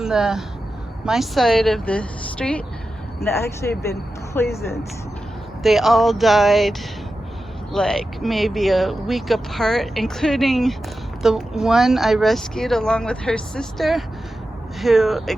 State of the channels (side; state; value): both; normal; correlation 0.92